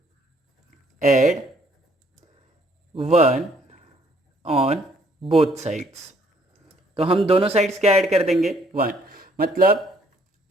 ऐड 1 ऑन बोथ साइड्स। तो हम दोनों साइड्स क्या ऐड कर देंगे, 1। मतलब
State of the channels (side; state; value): both; normal; correlation 0.64